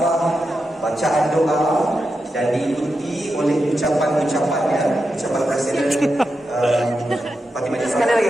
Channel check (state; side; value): normal; both; correlation 0.88